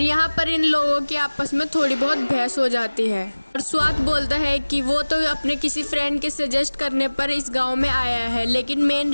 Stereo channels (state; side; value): inverted; both; correlation -1.00